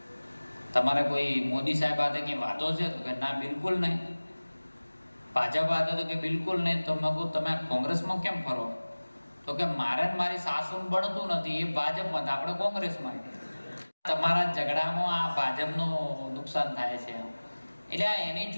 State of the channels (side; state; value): both; inverted; correlation -1.00